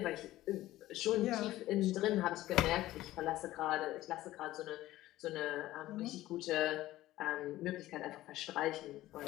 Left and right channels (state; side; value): quieter; right; 15.7 dB